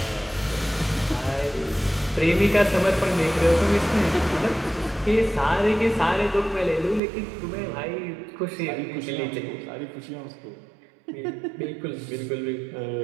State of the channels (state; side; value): drops out; left; at 7.0 s